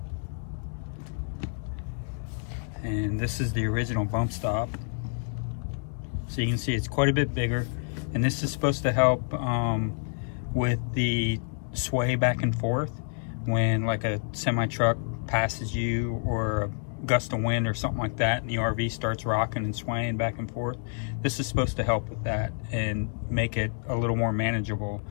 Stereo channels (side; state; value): right; silent; 59 dB below the other